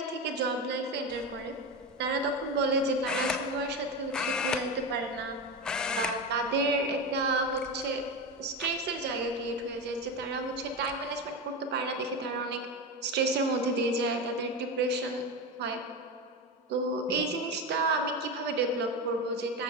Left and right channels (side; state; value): both; normal; correlation 0.19